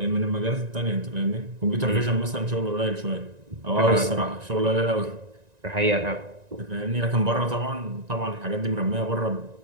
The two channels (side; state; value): left; late; 1.9 ms